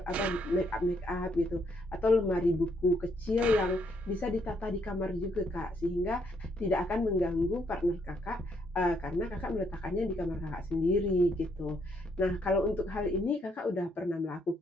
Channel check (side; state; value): both; normal; correlation 0.72